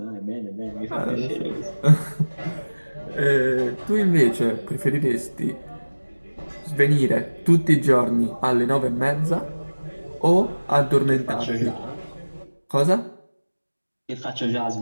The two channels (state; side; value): inverted; both; correlation -1.00